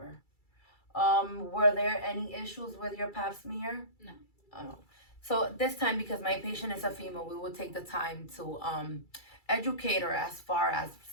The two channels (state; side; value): late; right; 2.3 ms